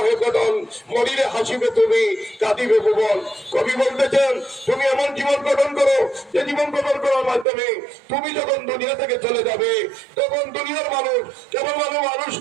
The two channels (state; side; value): drops out; left; at 7.5 s